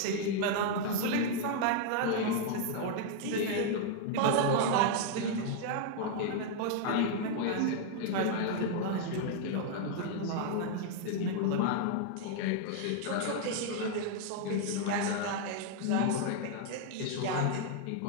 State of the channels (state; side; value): different; both; correlation 0.00